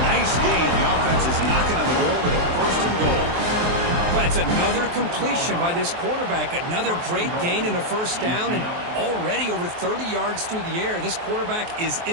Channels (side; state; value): left; late; 23 ms